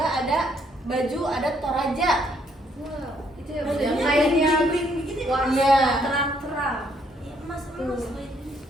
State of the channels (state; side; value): normal; both; correlation 0.69